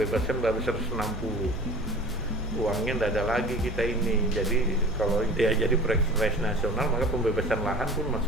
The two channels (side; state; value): both; normal; correlation 0.40